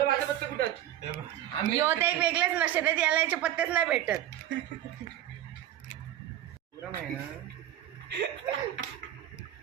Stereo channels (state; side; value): quieter; left; 12.1 dB